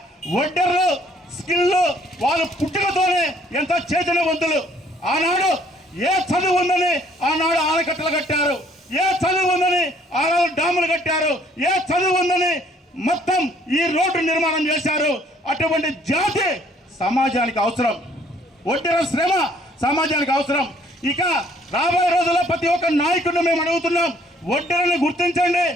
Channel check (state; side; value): normal; both; correlation 0.62